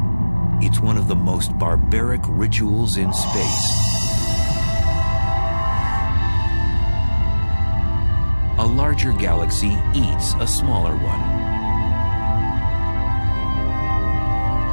It's one of the most barbaric rituals in space. A larger galaxy eats a smaller one.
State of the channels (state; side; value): inverted; both; correlation -1.00